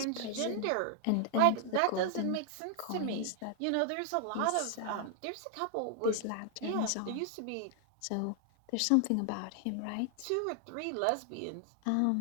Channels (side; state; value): both; different; correlation 0.00